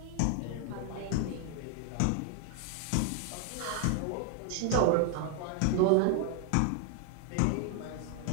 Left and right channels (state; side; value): different; both; correlation 0.00